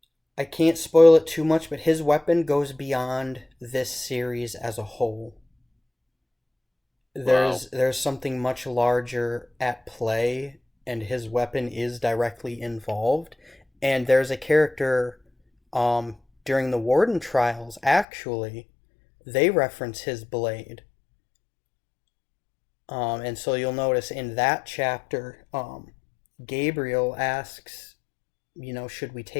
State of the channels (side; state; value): right; drops out; at 18.1 s